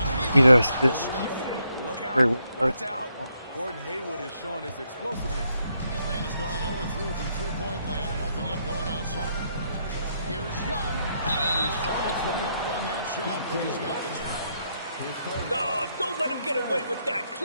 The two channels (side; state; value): both; inverted; correlation -0.76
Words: He does this. Look Great out. work. Watch out. Gordon Hayward is showing his explosiveness. Atlanta's gone 0-3 from three-point land. Nothing yet going outside. Here's Young. And he's fouled pretty hard on that shot, but he's got the job. No, don't let him get away with that.